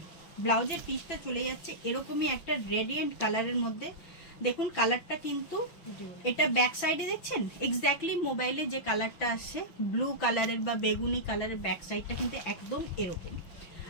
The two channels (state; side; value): late; right; 5.9 ms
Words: ব্লাউজের পিসটা চলে যাচ্ছে এরকমই একটা রেডিয়েন্ট কালারের মধ্যে। দেখুন কালারটা কিন্তু, এটা ব্যাক সাইডে দেখছেন এক্স্যাক্টলি মোবাইলে যে কালারটা আসছে ব্লু কালারের বা বেগুনি কালারের, ব্যাক সাইডটা কিন্তু একদম এরকম।